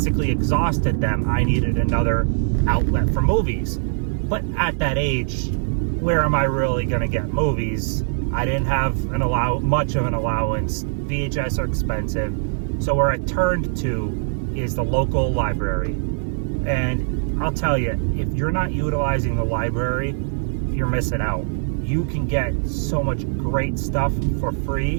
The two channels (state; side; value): silent; left; 59 dB below the other